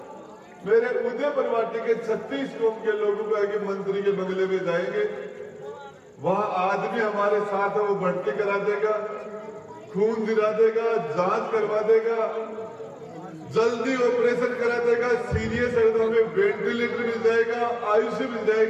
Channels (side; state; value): both; identical; correlation 1.00